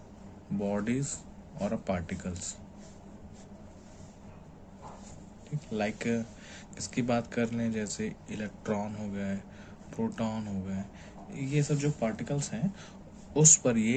bodies or particles. ठीक, लाइक इसकी बात कर लें जैसे इलेक्ट्रॉन हो गए, प्रोटॉन हो गए, ये सब जो पार्टिकल्स हैं उस पर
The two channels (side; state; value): both; identical; correlation 1.00